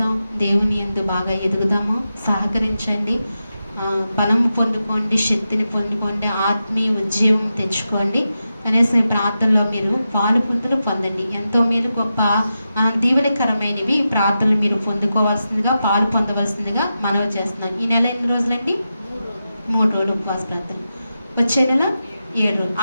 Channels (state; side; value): inverted; both; correlation -0.90